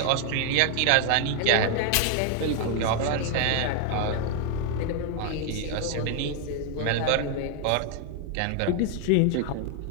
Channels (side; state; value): both; different; correlation 0.00